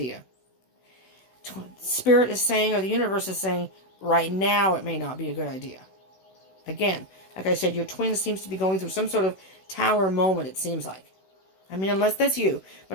Spirit is saying, or the universe is saying, right now it may not be a good idea. Again, like I said, your twin seems to be going through some sort of tower moment, it seems like. I mean, unless that's you,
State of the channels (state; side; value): late; right; 16 ms